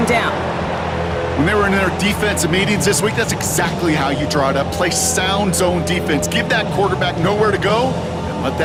down. When they were in their defensive meetings this week, that's exactly how you draw it up. Play sound zone defense. Give that quarterback nowhere to go and let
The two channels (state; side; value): identical; both; correlation 1.00